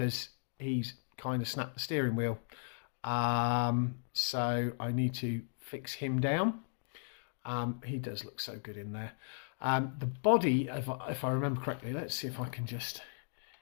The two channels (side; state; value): right; silent; digital silence